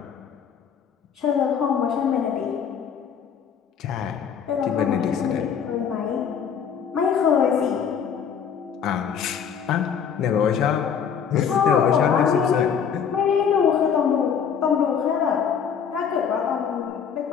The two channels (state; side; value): quieter; right; 7.4 dB